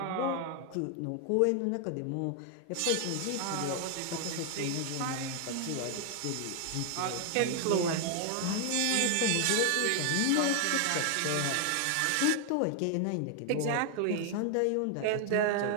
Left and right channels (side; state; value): both; different; correlation 0.00